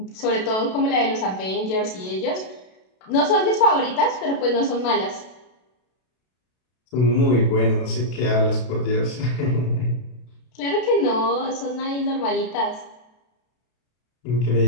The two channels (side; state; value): right; late; 32 ms